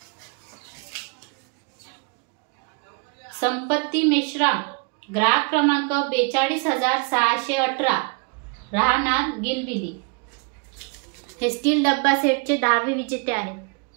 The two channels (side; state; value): left; quieter; 34.1 dB